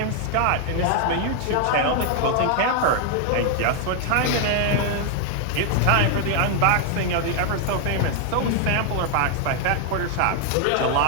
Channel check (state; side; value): different; both; correlation 0.00